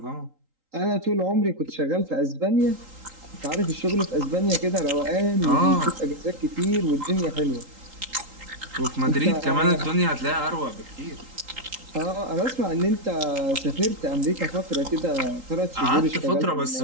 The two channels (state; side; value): late; left; 3.8 ms